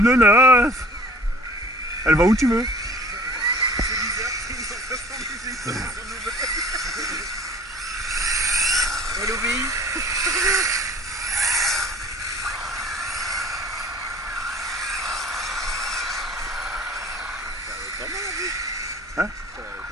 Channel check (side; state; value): both; normal; correlation 0.47